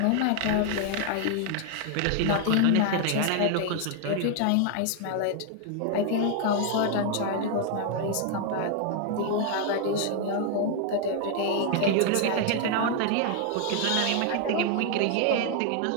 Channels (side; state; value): both; different; correlation 0.00